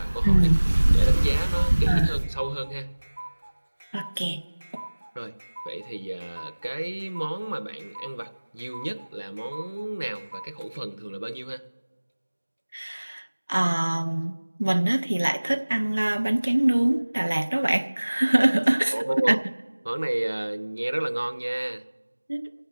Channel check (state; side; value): inverted; both; correlation -1.00